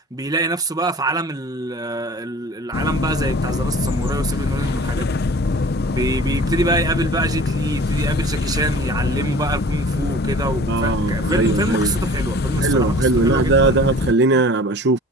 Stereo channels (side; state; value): both; normal; correlation 0.45